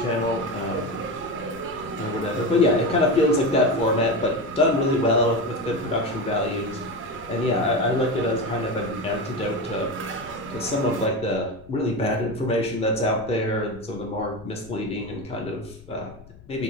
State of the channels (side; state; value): left; noise; rumble, 21 dB below the sound